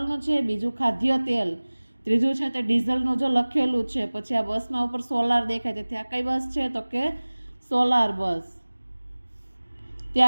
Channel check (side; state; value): both; inverted; correlation -1.00